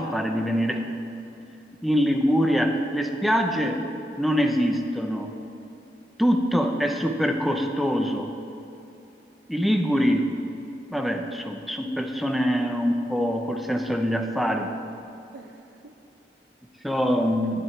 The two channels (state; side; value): normal; both; correlation 0.87